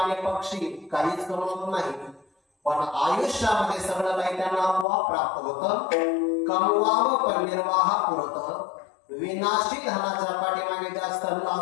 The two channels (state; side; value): drops out; right; at 4.9 s